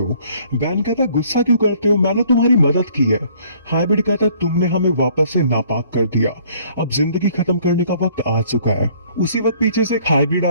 बैन कहता है गुस्सा क्यों करते हो, मैंने तुम्हारी मदद की है। हाइब्रिड कहता है तुमने हमें वापस से नापाक कर दिया, अब जिंदगी खत्म करने का वक्त आ चुका है। उसी वक्त पीछे से एक हाइब्रिड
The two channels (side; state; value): both; inverted; correlation -0.59